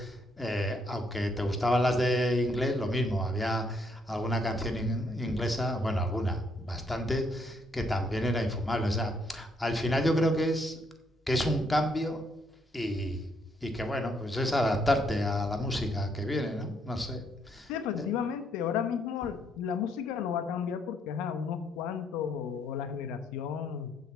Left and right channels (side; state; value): both; normal; correlation 0.72